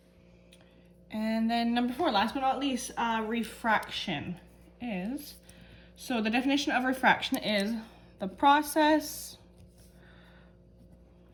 And then number 4, last but not least, refraction is, so the definition of refraction is the process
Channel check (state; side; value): identical; both; correlation 1.00